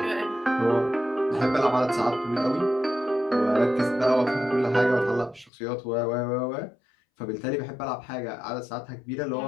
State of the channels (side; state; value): right; drops out; at 5.5 s